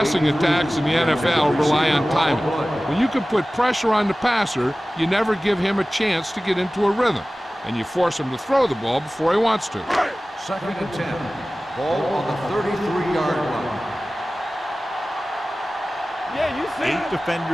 attacks in the NFL rely on timing. When you can put pressure on the passer, you never give him a chance to get into a rhythm, and you force him to throw the ball before he wants to. Second and 10. Ball on the 33-yard line. Yeah, you see. 8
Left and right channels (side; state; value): both; normal; correlation 0.97